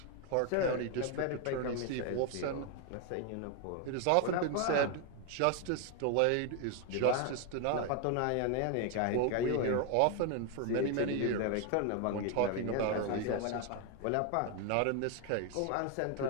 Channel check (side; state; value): both; different; correlation 0.01